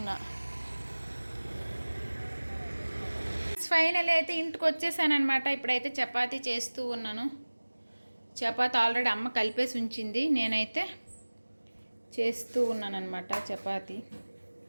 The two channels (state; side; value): inverted; both; correlation -1.00